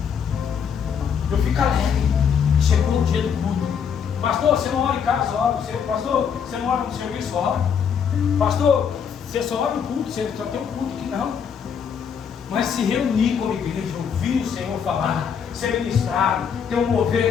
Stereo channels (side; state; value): right; quieter; 7.2 dB